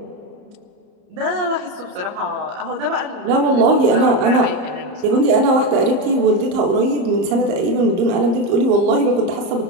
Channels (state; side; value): late; left; 34 ms